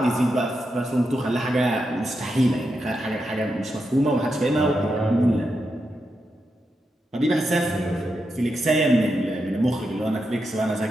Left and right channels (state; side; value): normal; both; correlation 0.86